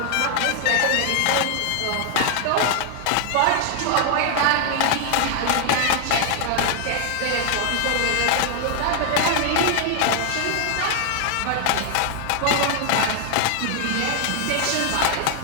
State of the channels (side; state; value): both; different; correlation 0.00